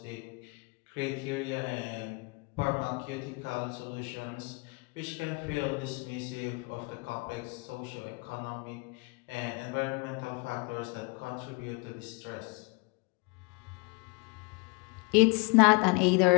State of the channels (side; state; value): right; quieter; 29.4 dB